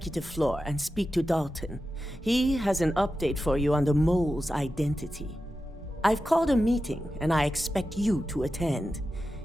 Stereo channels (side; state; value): both; normal; correlation 0.92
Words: floor and speak to Dalton. He has an update for you on the mole's identity. I've called a meeting, and I expect you to attend.